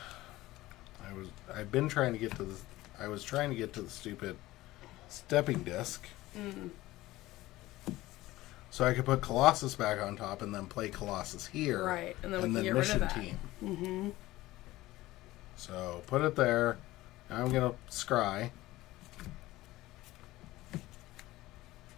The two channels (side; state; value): right; quieter; 17.5 dB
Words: I've been trying to get to the, I was trying to get to the stupid stepping disc. So I could put Colossus back on top and then play Colossus here. Right, and then we can get Mission rid of that. Team. Mm-hmm. So put it there. Now I'm going to scry.